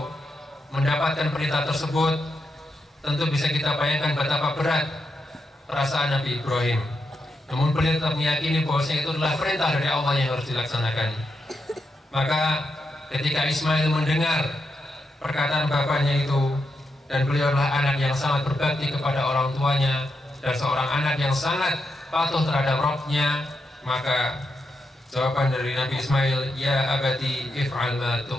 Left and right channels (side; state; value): both; normal; correlation 0.84